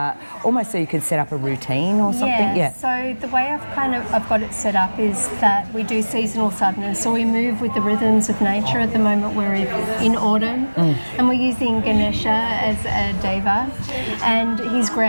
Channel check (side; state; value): both; inverted; correlation -1.00